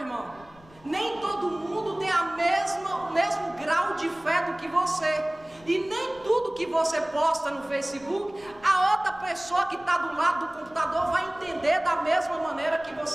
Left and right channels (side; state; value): left; noise; rumble, 25 dB below the sound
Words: Nem todo mundo tem o mesmo grau de fé do que você. E nem tudo que você posta no Facebook, a outra pessoa que está do lado do computador vai entender da mesma maneira que